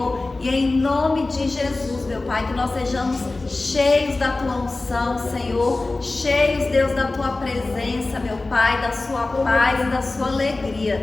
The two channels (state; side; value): quieter; right; 3.2 dB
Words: e em nome de Jesus, meu Pai, que nós sejamos cheios da Tua unção, Senhor, cheios, Deus, da Tua presença, meu Pai, da Sua paz e da Sua